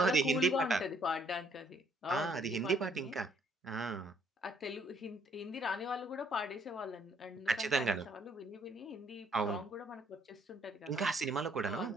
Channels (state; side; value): normal; both; correlation 0.66